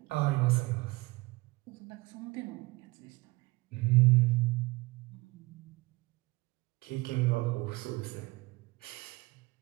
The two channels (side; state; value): left; quieter; 22.9 dB